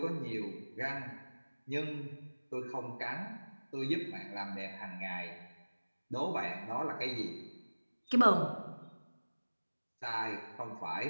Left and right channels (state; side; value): inverted; both; correlation -1.00